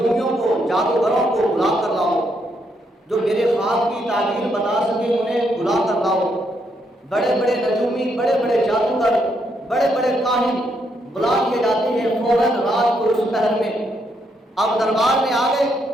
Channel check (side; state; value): both; normal; correlation 0.76